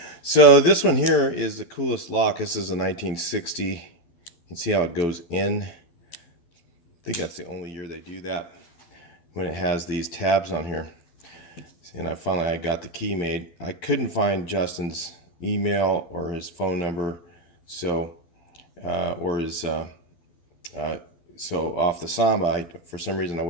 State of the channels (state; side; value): late; right; 12 ms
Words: So this one here is the coolest lock. This is a 1960. You can see how it goes in. I think that's the only year they do that, when it has these tabs on here. And I got the key made. I couldn't find Justin's email or his phone number, so so off the Samba, for some reason I